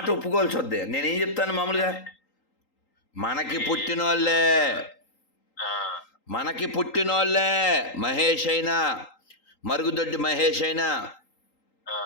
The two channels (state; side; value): late; right; 3.8 ms